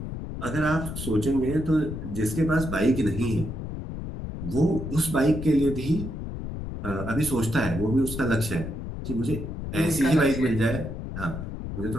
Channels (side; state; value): left; noise; rumble, 7 dB below the sound